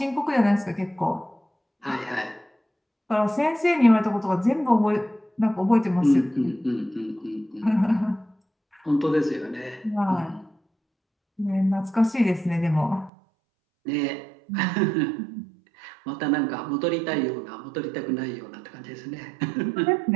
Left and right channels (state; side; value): drops out; left; at 13.1 s